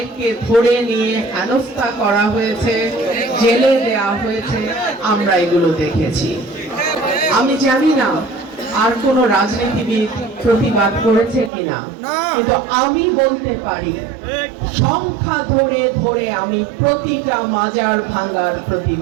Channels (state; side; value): drops out; left; at 11.5 s